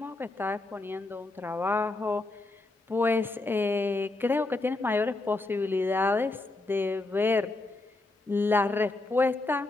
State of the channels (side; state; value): right; quieter; 3.1 dB